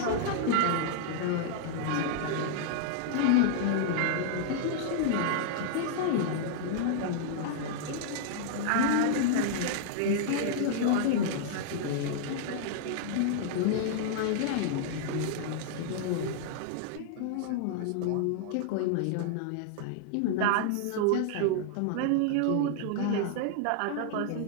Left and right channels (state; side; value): different; both; correlation -0.01